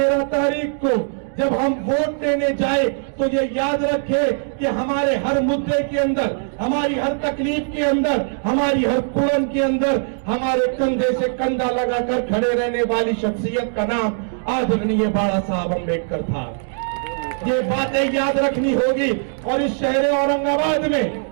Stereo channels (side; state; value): left; silent; digital silence